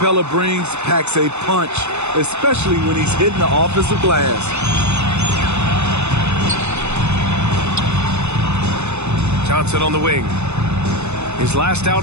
brings packs a punch, especially when he's hitting the offensive glass. Johnson on the wing. His last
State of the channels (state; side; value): late; left; 0.82 ms